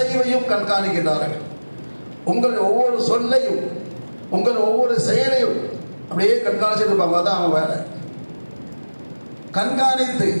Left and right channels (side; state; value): both; inverted; correlation -1.00